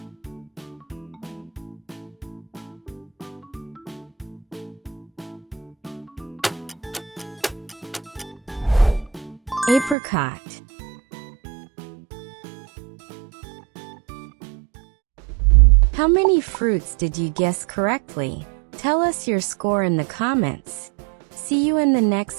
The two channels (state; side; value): drops out; left; at 10.0 s